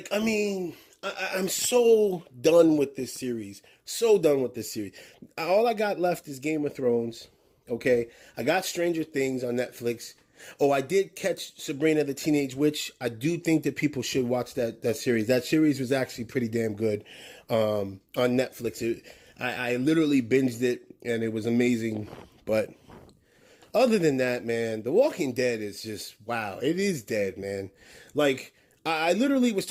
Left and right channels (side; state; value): both; identical; correlation 1.00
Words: so done with this series. So done with this series. All I got left is Game of Thrones. Okay, I got Stranger Things on Netflix. Oh, I did catch Sabrina the Teenage Witch. I do think that people should watch that series. That series was actually pretty damn good on Netflix. I literally binged it, and it was amazing. But other than that, man, The Walking Dead is just, wow. It is dead, man. Like, I literally was